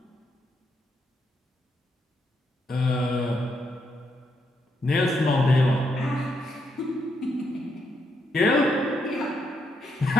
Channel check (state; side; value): normal; both; correlation 0.78